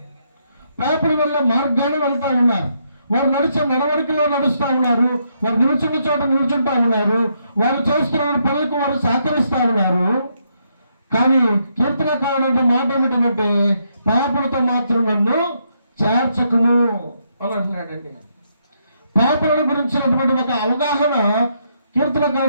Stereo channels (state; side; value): inverted; both; correlation -0.76